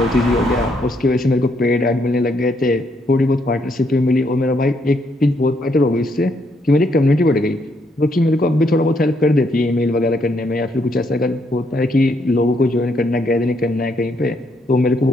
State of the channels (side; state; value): both; normal; correlation 0.74